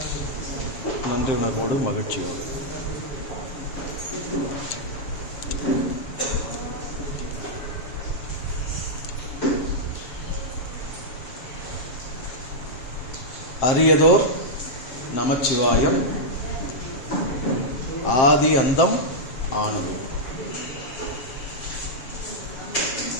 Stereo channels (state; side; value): late; right; 7.1 ms